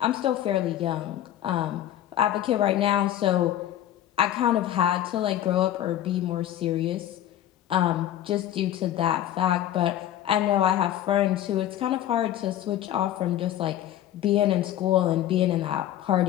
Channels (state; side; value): quieter; right; 12.2 dB